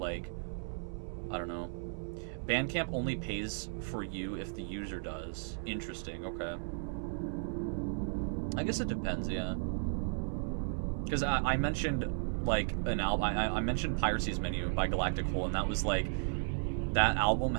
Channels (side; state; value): left; silent; 55 dB below the other